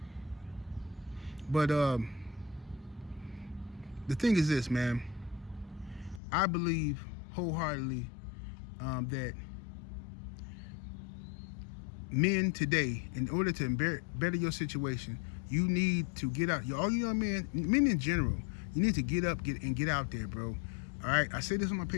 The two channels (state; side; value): drops out; right; at 6.2 s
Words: But the thing is this, man. I believe wholeheartedly that men today, in order to better your situation, you need to get out. All you young men in general, you need to get up, get out there, bro. All right, I say this on my